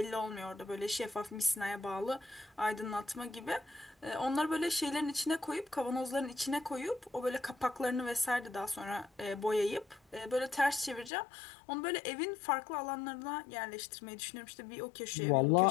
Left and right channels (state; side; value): drops out; right; at 11.1 s